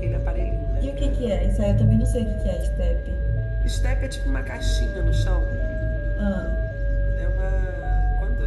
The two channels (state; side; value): identical; both; correlation 1.00